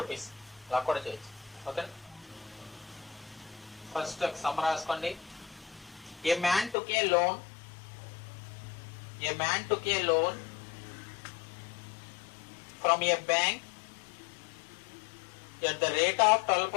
అలా కూడా చేయొచ్చు. ఓకే, ఫస్ట్ సమ్ రాసుకోండి. ఏ man took A loan from a bank at the rate of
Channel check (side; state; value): right; drops out; at 6.8 s